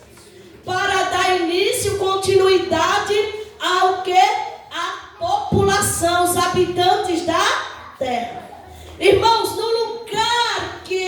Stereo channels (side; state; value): both; identical; correlation 1.00